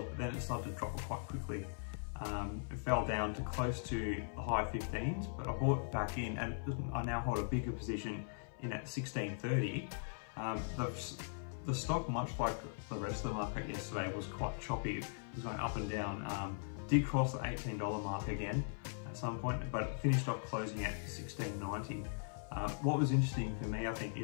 but then it started to drop quite quickly. It fell down to close to the high 15s, but I bought back in, and I now hold a bigger position in at 16.30. The stock, much like the rest of the market yesterday, was quite choppy. It was going up and down. Did cross the $18 mark again at some point, but it finished off closing at 16.90. What was interesting for me, I think,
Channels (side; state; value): right; silent; 51 dB below the other